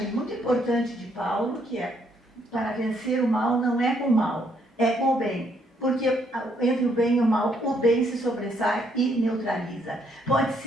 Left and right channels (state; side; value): normal; both; correlation 0.71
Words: muito importante de Paulo, que é para vencer o mal não é com o mal, é com o bem. Porque entre o bem e o mal, o bem se sobressai e neutraliza. Pode